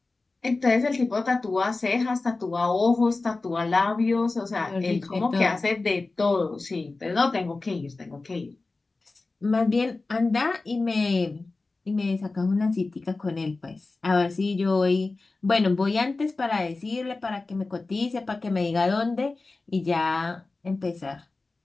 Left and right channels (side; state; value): right; quieter; 3.5 dB